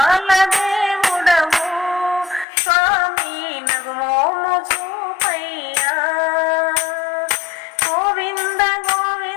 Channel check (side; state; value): right; drops out; at 2.5 s